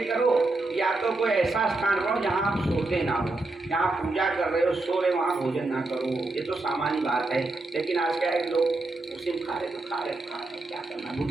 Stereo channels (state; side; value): quieter; left; 3.1 dB